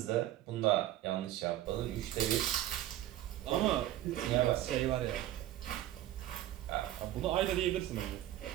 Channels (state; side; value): quieter; left; 13.6 dB